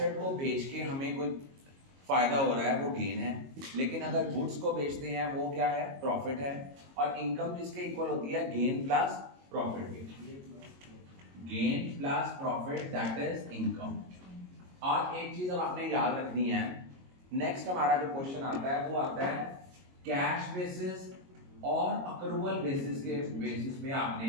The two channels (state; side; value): late; left; 22 ms